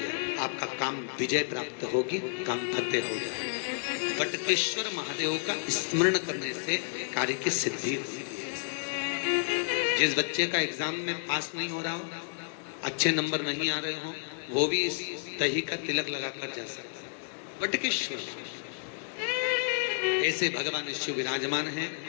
आपका काम विजय प्राप्त होगी, काम फतेह हो जाए। बटकेश्वर महादेव का स्मरण करने से कार्य की सिद्धि होती है। जिस बच्चे का एग्जाम में पास नहीं हो रहा हो, अच्छे नंबर नहीं आ रहे हो, वो भी इस दही का तिलक लगाकर जा सकता है। बटकेश्वर ऐसे भगवान शिव विराजमान हैं।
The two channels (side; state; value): right; silent; digital silence